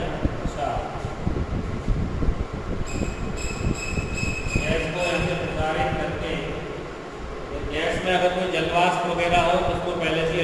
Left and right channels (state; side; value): identical; both; correlation 1.00